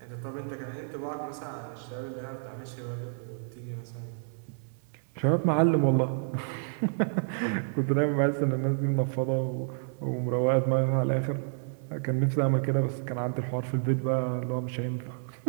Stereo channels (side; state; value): left; silent; 58 dB below the other